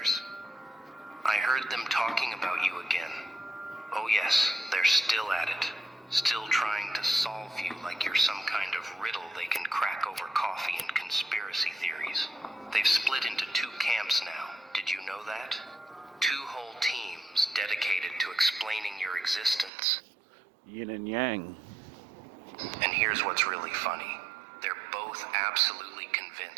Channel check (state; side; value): drops out; left; at 19.7 s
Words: I heard them talking about you again. Oh yes, they're still at it. Still trying to solve you like you're some kind of riddle they can crack over coffee and conspiracy theories. They've split into two camps now. Did you know that? Two whole teams dedicated to explaining your existence. Yin and yang. And here's what's really funny. They're both absolutely